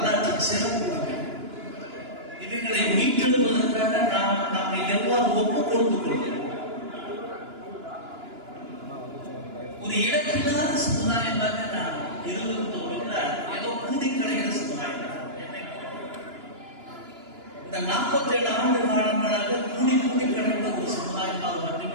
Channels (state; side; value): late; left; 2.9 ms